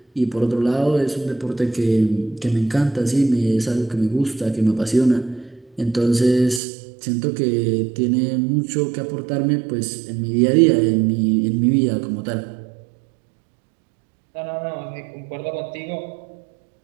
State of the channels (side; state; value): left; drops out; at 6.6 s